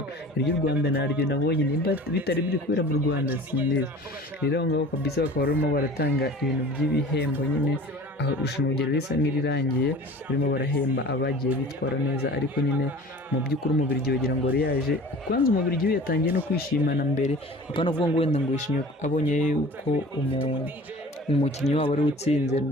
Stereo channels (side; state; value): both; normal; correlation 0.42